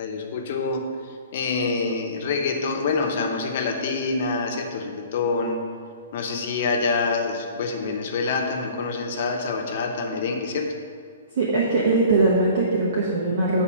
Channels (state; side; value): inverted; both; correlation -0.47